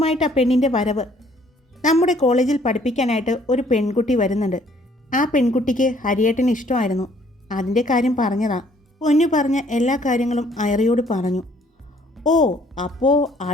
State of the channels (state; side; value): normal; both; correlation 0.61